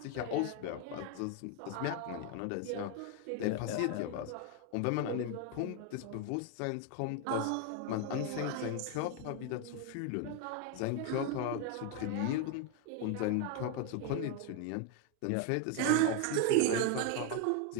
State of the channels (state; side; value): different; both; correlation 0.01